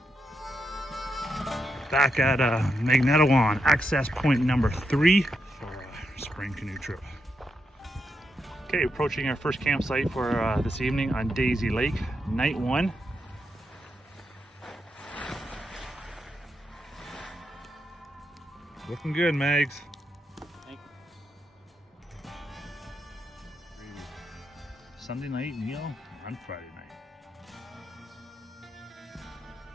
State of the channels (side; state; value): both; normal; correlation 0.83